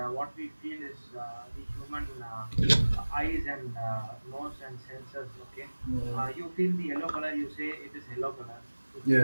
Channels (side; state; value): both; inverted; correlation -1.00